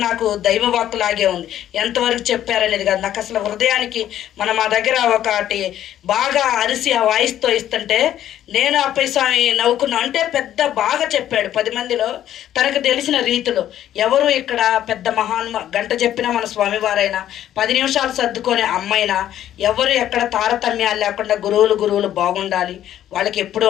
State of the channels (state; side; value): quieter; right; 11.6 dB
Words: నాకు దైవవాక్కులాగే ఉంది. ఎంతవరకు చెప్పారనేది కాదు, నాకు అసలు హృదయానికి మా దగ్గర ఒకటి బాగా అరిసి ఆ వాయిస్తో ఇస్తుంటే నేను అప్పయ్య స్వామి నవ్వుకున్నా. అంటే పెద్ద బాగా చెప్పాడు 10 మందిలో తనకు తెలిసిన రీతిలో. ఎవరు ఇక్కడ పెద్ద గంట చెప్పినా మన స్వామివారైనా 10 నిమిషాలు సర్దుకొని అమ్మ అమ్మైనా ఎవరు ఎక్కడ తారతమ్యాలు లేకుండా గురువులు బాగుండాలి, వాళ్ళకి ఎప్పుడూ